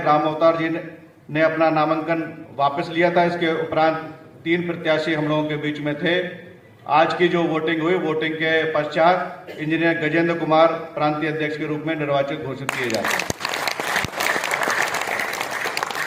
राम अवतार जी ने अपना नामांकन वापस लिया था। इसके उपरांत 3 प्रत्याशी हम लोगों के बीच में थे। आज की जो वोटिंग हुई, वोटिंग के पश्चात इंजीनियर गजेंद्र कुमार प्रांतीय अध्यक्ष के रूप में निर्वाचित घोषित किए जाते हैं।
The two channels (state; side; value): identical; both; correlation 1.00